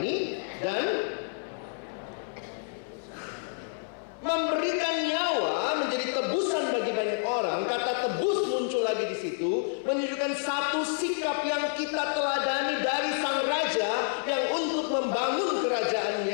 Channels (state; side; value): silent; right; 59 dB below the other